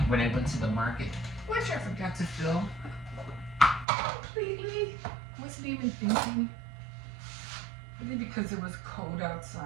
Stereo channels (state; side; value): drops out; left; at 3.9 s